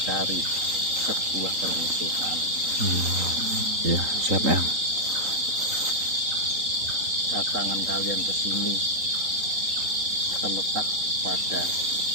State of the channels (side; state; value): left; late; 3.8 ms